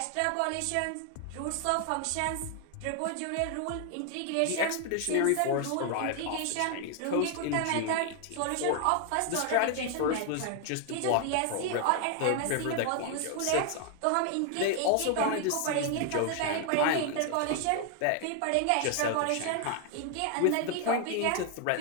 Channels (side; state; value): both; different; correlation 0.00